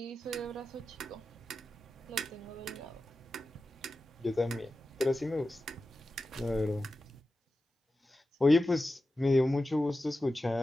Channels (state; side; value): normal; both; correlation 0.93